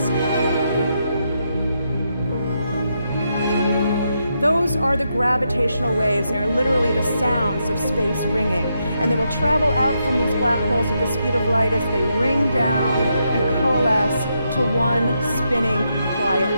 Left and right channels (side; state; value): both; inverted; correlation -0.81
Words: Those are the gravitational waves. They are literally the sounds of space ringing. And they will travel out from these black holes at the speed of light as they ring down and coalesce to one spinning,